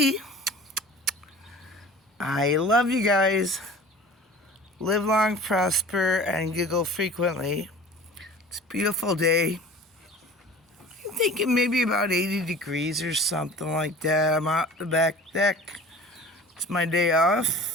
I love you guys. Live long, prosper, and giggle frequently. It's a beautiful day. I'm thinking maybe about 80 degrees or something like that. I'm out the back deck. It's my day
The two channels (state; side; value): normal; both; correlation 0.42